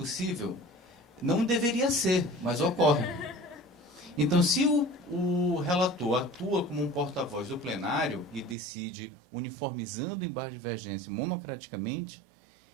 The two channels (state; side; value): drops out; left; at 8.6 s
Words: Não deveria ser, mas ocorre. Então, se o relator atua como um porta-voz do plenário e decide, uniformizando o embargo de divergência monocraticamente,